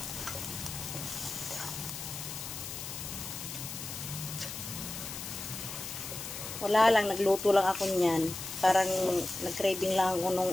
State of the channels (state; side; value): noise; left; hiss, 8 dB below the sound